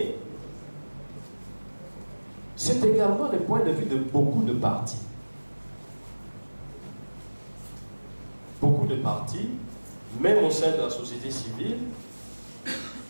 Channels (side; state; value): both; inverted; correlation -1.00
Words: c'est également le point de vue de beaucoup de partis. Beaucoup de partis, même au sein de la société civile,